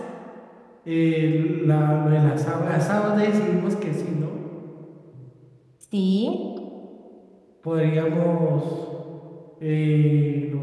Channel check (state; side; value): identical; both; correlation 1.00